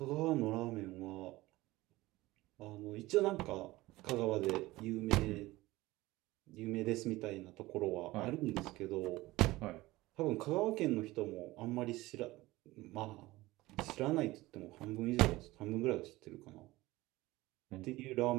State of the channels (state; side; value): quieter; left; 19.0 dB